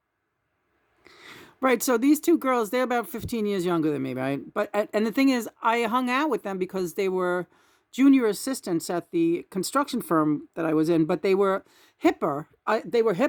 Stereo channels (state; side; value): identical; both; correlation 1.00